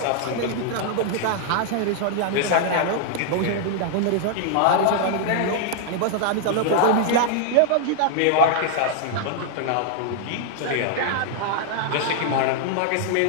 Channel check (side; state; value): both; different; correlation -0.01